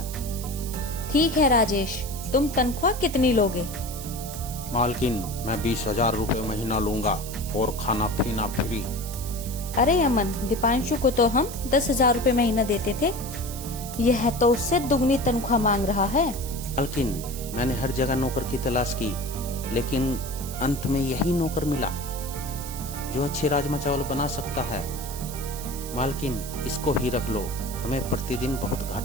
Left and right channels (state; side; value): noise; right; hiss, 11 dB below the sound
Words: ठीक है राजेश, तुम तनख्वाह कितनी लोगे? मालकिन, मैं 20,000 रुपए महीना लूंगा और खाना पीना फ्री। अरे अमन, दीपांशु को तो हम 10,000 रुपए महीना देते थे। यह तो उससे दुगनी तनख्वाह मांग रहा है। मालकिन, मैंने हर जगह नौकर की तलाश की, लेकिन अंत में यही नौकर मिला जो अच्छे राजमा चावल बना सकता है। मालकिन, इसको ही रख लो, हमें प्रतिदिन बहुत